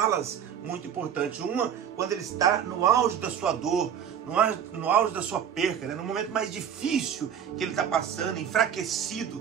muito importantes. Uma, quando ele está no auge da sua dor, no auge da sua perca, no momento mais difícil que ele está passando,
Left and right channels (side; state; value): left; quieter; 8.5 dB